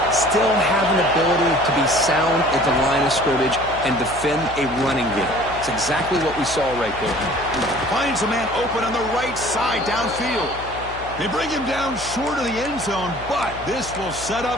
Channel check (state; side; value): noise; left; hum, 15 dB below the sound